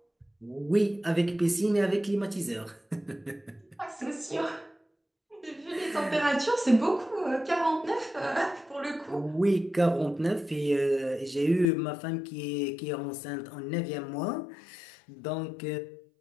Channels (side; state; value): right; drops out; at 11.7 s